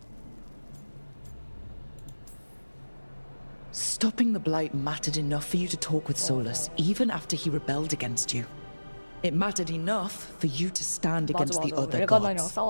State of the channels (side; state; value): both; inverted; correlation -1.00